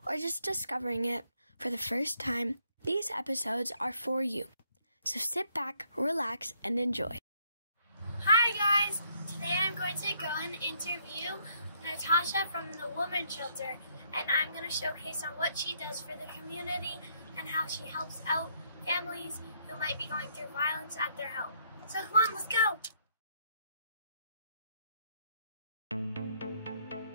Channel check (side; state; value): both; inverted; correlation -0.69